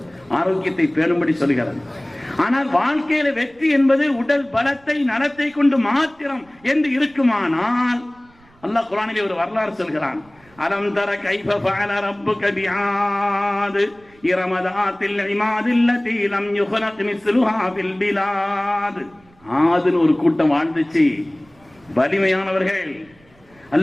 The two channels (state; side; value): noise; right; rumble, 30 dB below the sound